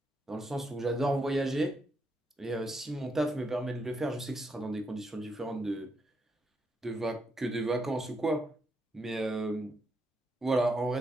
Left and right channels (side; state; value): both; normal; correlation 0.80